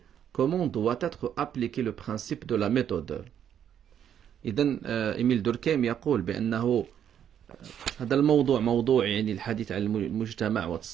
comment doit être appliqué le principe de la méthode. إذن إيميل دوركهيم يقول بأنه هذا الموضوع موضوع يعني الحديث عن المجتمع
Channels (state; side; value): quieter; left; 9.4 dB